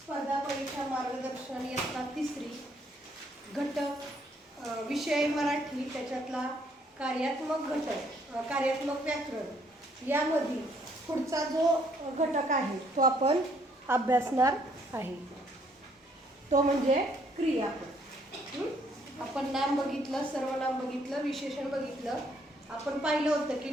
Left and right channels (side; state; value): both; normal; correlation 0.67